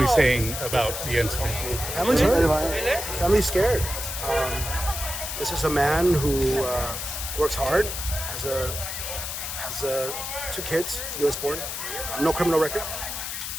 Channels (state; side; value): noise; left; hiss, 5 dB below the sound